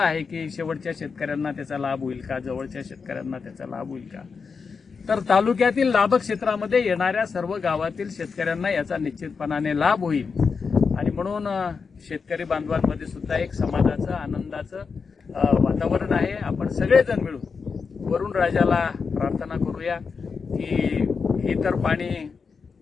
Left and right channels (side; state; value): right; quieter; 5.3 dB